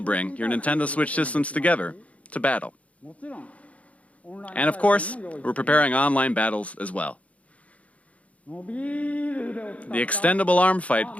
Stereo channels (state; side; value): late; right; 0.066 ms